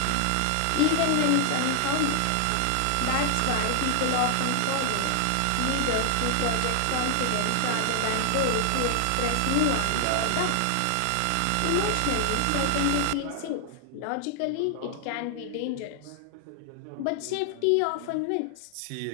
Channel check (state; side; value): different; both; correlation 0.00